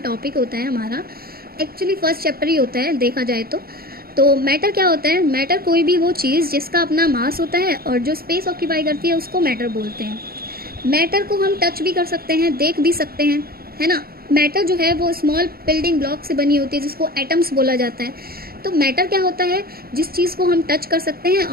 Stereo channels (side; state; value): left; late; 0.44 ms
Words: होता है हमारा. एक्चुअली फर्स्ट चैप्टर ही होता है देखा जाए तो मैटर क्या होता है. मैटर कोई भी वो चीज़ जिसका अपना मास होता है और जो स्पेस ऑक्यूपाई करती है उसको मैटर बोलते हैं. मैटर को हम टच भी कर सकते हैं, देख भी सकते हैं, है ना. मैटर जो है वो स्मॉल बिल्डिंग ब्लॉक से बनी होती है जिसको एटम्स बोला जाता है. तो मैटर क्या होता है, जिस चीज़ को हम टच कर सकते हैं